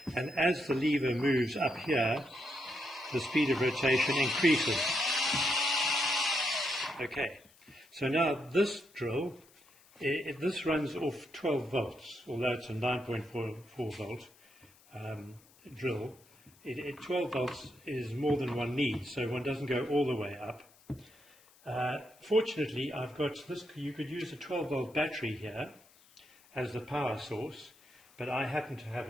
and as the lever moves up here, the speed of rotation increases. Okay, so now this drill, this runs off 12 volts, although it's a 9.44 volt drill. 12 volts is more than one needs, so one doesn't go all the way up. Fortunately, I've got this. You could use a 12 volt battery here as the power source, but I happen to have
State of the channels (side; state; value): left; noise; hiss, 28 dB below the sound